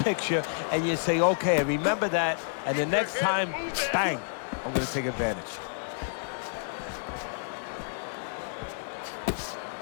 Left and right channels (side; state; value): right; silent; digital silence